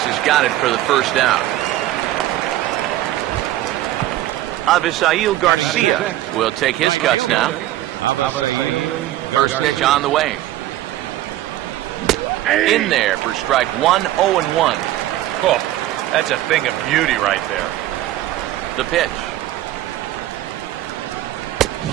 has got it for the first out. Avisail Garcia will take his cuts now. First pitch on the way. In there for strike 1, 0-1. Oh, that's a thing of beauty right there. The pitch.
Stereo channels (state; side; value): quieter; left; 14.4 dB